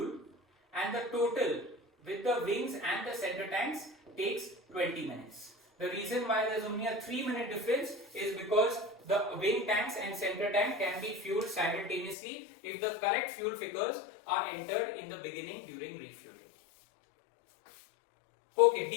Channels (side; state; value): right; drops out; at 12.2 s